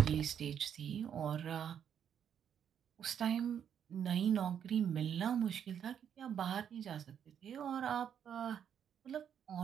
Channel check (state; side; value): quieter; left; 8.6 dB